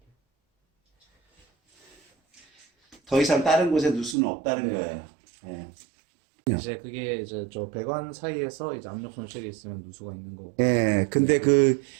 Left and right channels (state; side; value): drops out; left; at 4.2 s